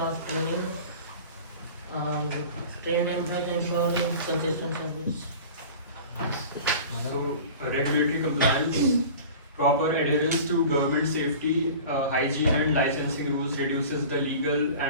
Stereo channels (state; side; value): inverted; both; correlation -0.39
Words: training, trained employees ensuring consistent service. So, regulatory compliance, proper adherence to government safety, hygiene and licensing rules reduces the legal